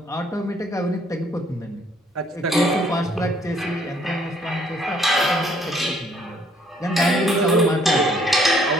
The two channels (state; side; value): normal; both; correlation 0.64